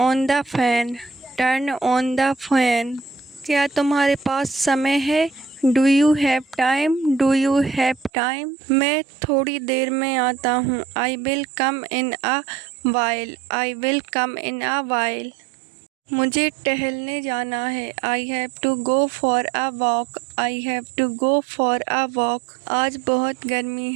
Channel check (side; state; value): left; drops out; at 8.1 s